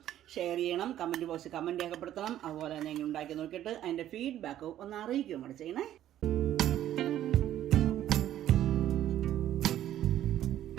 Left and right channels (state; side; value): quieter; left; 12.1 dB